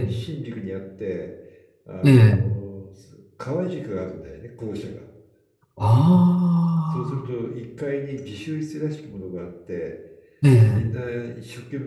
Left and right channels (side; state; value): both; identical; correlation 1.00